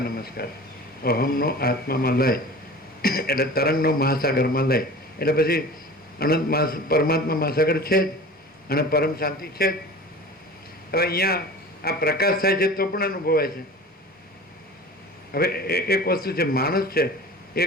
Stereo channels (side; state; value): both; normal; correlation 0.38